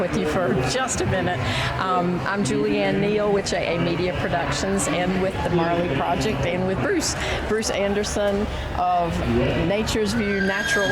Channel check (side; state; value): both; identical; correlation 1.00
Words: with you for just a minute. I'm Julianne Neal with JA Media Productions and with the Marley Project and with Bruce Anderson of Nature's View, Natural